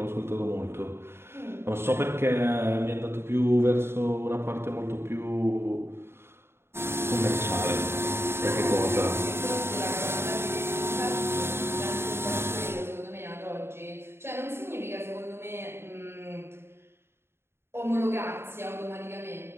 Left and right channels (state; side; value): late; left; 0.12 ms